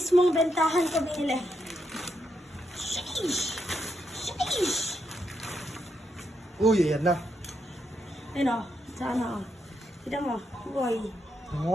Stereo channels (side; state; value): both; normal; correlation 0.81